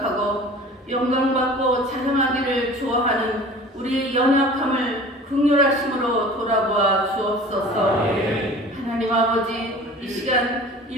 영광받고 자랑하기를 좋아하는 우리의 연약함을 긍휼하심으로 돌아보아 주옵소서. 하나님 아버지, 이 시간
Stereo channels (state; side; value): normal; both; correlation 0.42